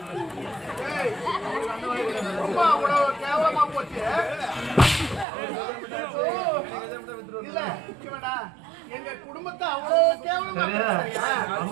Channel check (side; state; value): left; drops out; at 5.2 s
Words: கேவலமா போச்சு. இல்ல எங்க குடும்பத்தை அவ்வளவு கேவலமா